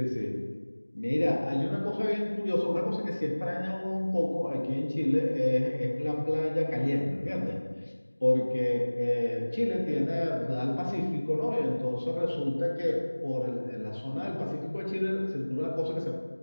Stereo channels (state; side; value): inverted; both; correlation -1.00